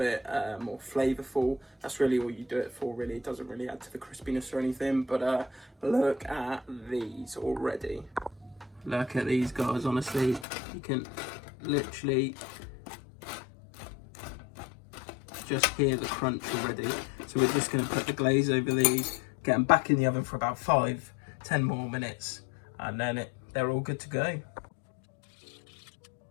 more flavourful. That's really all you do it for, really. It doesn't really add to the crispiness or anything, but look at these already. Look at these, guys, honestly. You can literally just hear the crunch already. So we're just going to put the glaze over these, get them back in the oven for about 5-10 more minutes, and then they're all good to go.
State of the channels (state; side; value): drops out; right; at 10.5 s